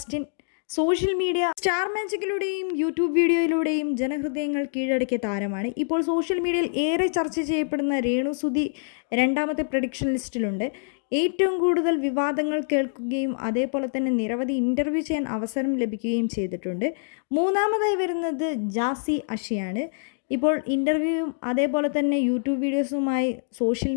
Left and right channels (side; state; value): right; silent; digital silence